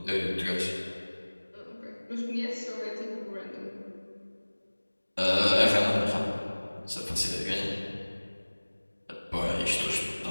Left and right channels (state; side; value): inverted; both; correlation -1.00